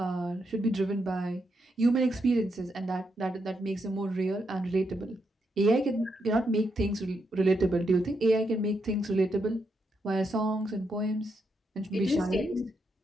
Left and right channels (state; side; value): normal; both; correlation 0.81